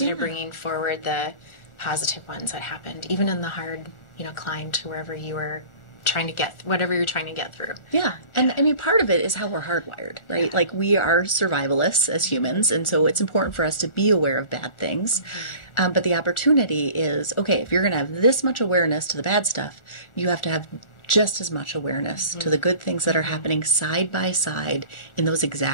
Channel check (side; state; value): right; late; 1.4 ms